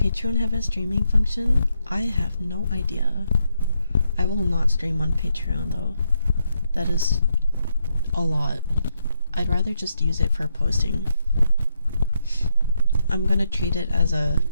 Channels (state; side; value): inverted; both; correlation -0.80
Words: have a streaming function? I have no idea. I will not stream on Patreon though. That is a lot. I'd rather just use it for posting. I'm gonna treat it as a